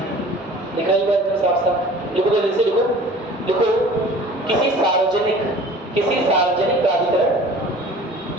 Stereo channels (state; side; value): normal; both; correlation 0.45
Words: लिखा ही बात साफ साफ लिखो, जल्दी से लिखो। लिखो, किसी सार्वजनिक प्राधिकरण